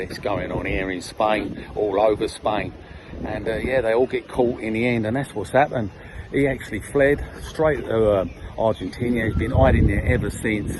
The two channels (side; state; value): both; identical; correlation 1.00